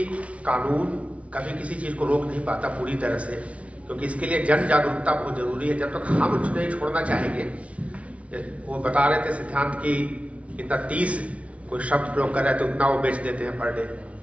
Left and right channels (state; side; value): late; left; 0.064 ms